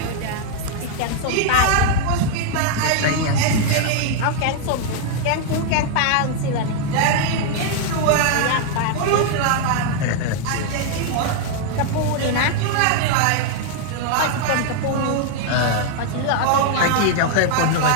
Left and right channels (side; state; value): both; different; correlation 0.00